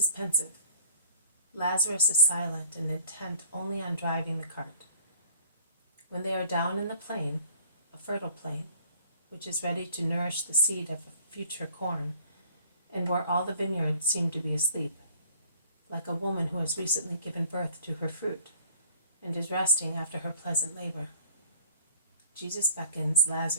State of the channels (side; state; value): both; inverted; correlation -0.54